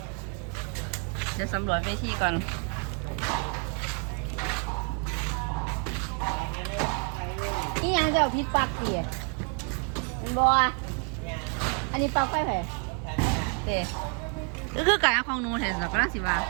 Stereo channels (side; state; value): left; quieter; 38.4 dB